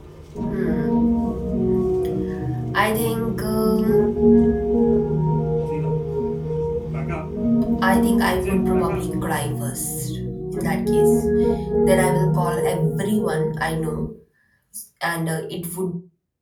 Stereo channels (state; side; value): identical; both; correlation 1.00